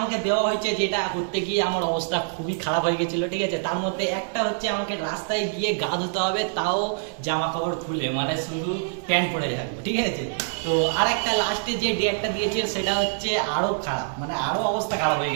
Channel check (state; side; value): silent; left; digital silence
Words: দেওয়া হয়েছে যেটা করতে গিয়ে আমার অবস্থা খুবই খারাপ হয়ে গেছিল, ঠিক আছে? তার মধ্যে একটা হচ্ছে আমাকে রাস্তায় গিয়ে গা ধুতে হবে, তাও জামা কাপড় খুলে, মানে শুধু প্যান্ট পরে থাকবো, ঠিক আছে? তো আর একটা লাস্টে যে ডেয়ারটা দিয়েছে সেটা হচ্ছে আরো খারাপ, মানে আরো অবস্থা খারাপ হয়ে